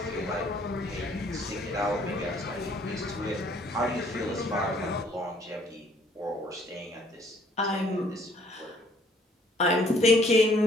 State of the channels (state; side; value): normal; both; correlation 0.61